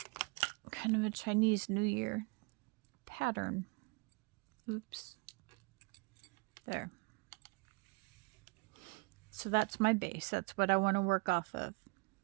kind of a Chinese New Year pattern. Oops. There. So that's my base. That's what I want to work off of.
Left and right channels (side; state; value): left; quieter; 29.0 dB